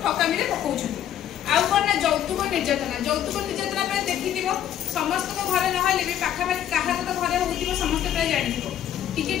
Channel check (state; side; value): quieter; right; 10.7 dB